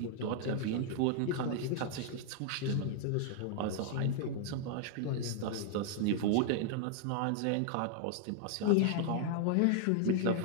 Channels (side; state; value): both; different; correlation 0.00